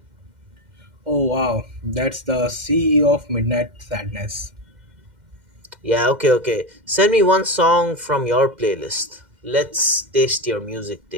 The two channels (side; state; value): left; late; 2.1 ms